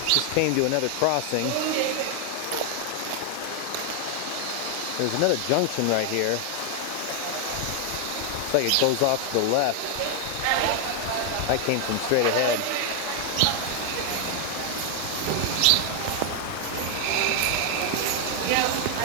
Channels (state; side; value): different; both; correlation 0.00